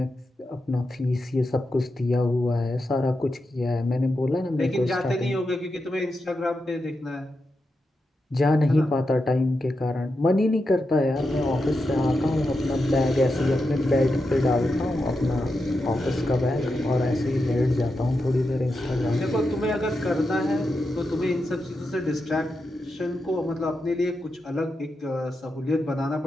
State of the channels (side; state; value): both; normal; correlation 0.88